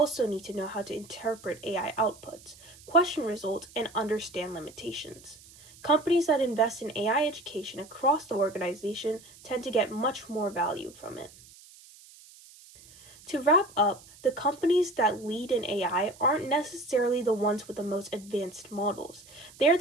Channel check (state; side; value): noise; right; hiss, 22 dB below the sound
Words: need to know how to interpret AI outputs, question results, and understand limitations. Companies that invest in AI education across the organization tend to get much more value from it. To wrap up, the companies that lead in AI aren't necessarily the ones with the most advanced models. They're